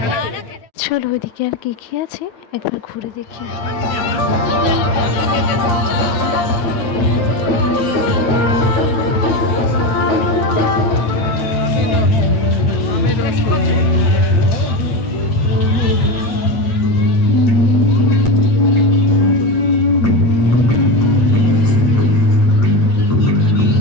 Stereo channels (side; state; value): right; late; 9.3 ms